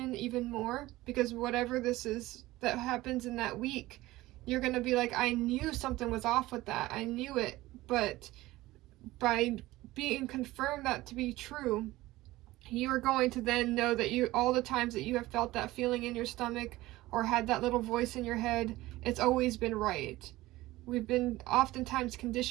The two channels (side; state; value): left; quieter; 18.0 dB